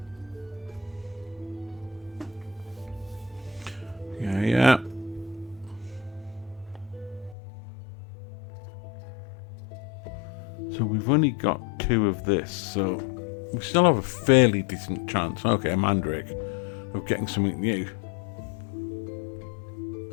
Yeah. So we've only got 2 of this, so we still have a fairly decent chance. Okay, a mandrake, of getting something new.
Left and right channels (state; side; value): drops out; right; at 7.4 s